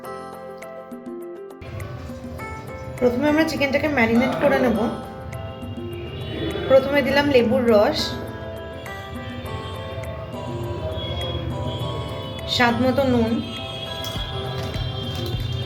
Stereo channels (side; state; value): both; identical; correlation 1.00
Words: প্রথমে আমরা চিকেনটাকে ম্যারিনেট করে নেব। প্রথমে দিলাম লেবুর রস, স্বাদ মতো নুন,